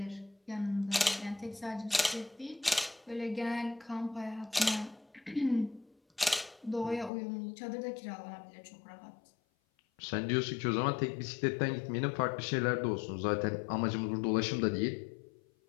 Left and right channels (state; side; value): drops out; right; at 7.1 s